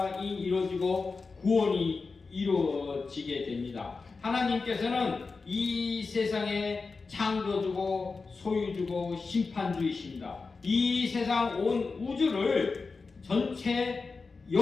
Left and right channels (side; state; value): right; quieter; 4.3 dB